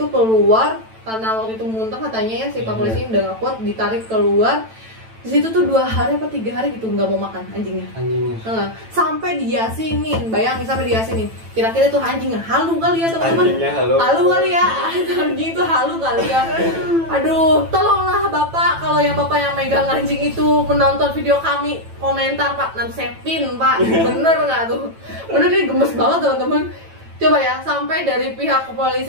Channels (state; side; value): late; left; 9.0 ms